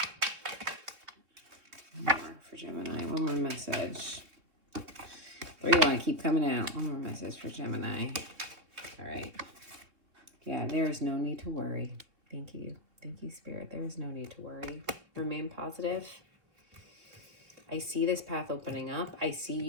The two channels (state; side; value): late; left; 3.3 ms